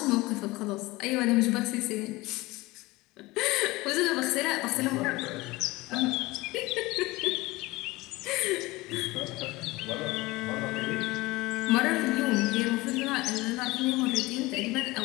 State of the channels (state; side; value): quieter; right; 20.9 dB